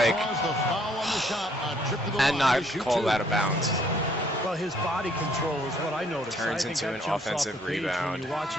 he calls the foul on the shot. A trip to the and line not to shoot called two. out of bounds. Well, his body control is what I noticed. Turns I think into that an jumps off offensive the page rebound. When you watch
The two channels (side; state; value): both; normal; correlation 0.65